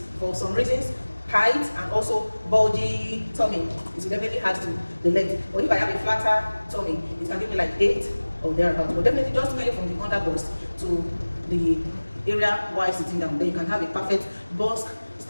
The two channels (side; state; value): both; inverted; correlation -1.00